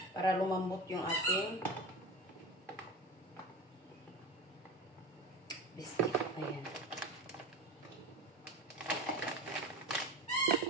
Para lumambot yung ating biscuit. Ayan.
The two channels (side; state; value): both; normal; correlation 0.28